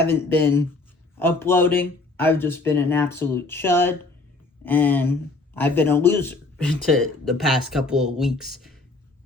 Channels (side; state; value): right; quieter; 3.4 dB